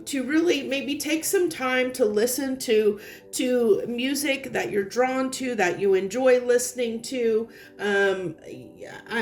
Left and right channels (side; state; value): both; identical; correlation 1.00